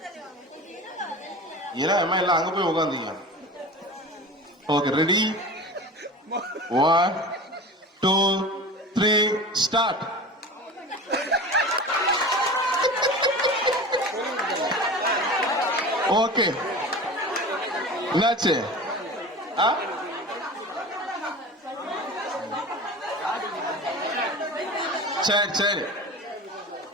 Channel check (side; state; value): both; normal; correlation 0.33